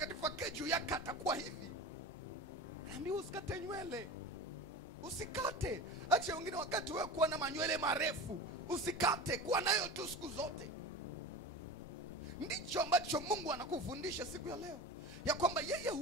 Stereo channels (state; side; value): normal; both; correlation 0.31